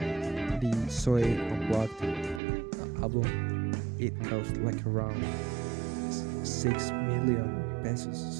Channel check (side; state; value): left; drops out; at 2.4 s